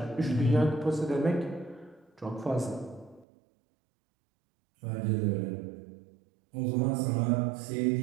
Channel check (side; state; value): left; drops out; at 3.2 s